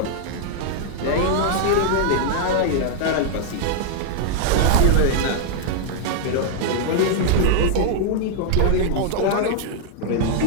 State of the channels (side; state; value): both; different; correlation -0.01